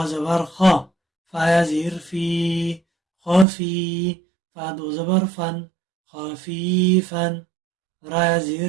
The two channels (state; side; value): drops out; left; at 3.5 s